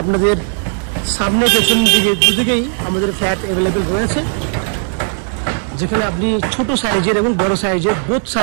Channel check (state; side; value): silent; left; digital silence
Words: আপনাদের সামনে পেছন দিকে দুদিকেই আমাদের ফ্ল্যাট অ্যাভেলেবেল রয়েছে, যেখানে আপনি ছোট সাইজের এবং বড় সাইজের বোথ